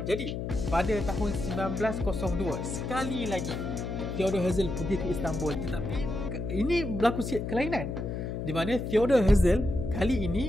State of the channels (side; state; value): left; noise; hum, 4 dB below the sound